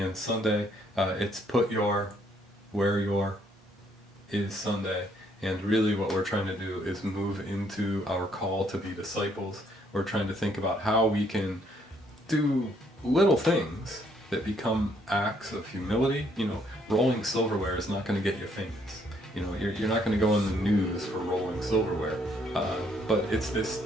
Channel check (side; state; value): both; normal; correlation 0.68